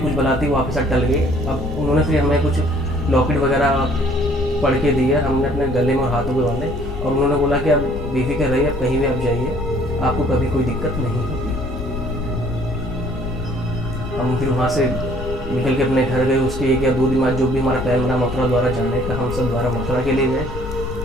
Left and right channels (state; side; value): noise; left; rumble, 7 dB below the sound